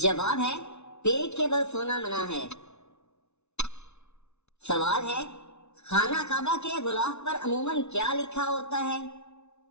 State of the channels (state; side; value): late; right; 0.81 ms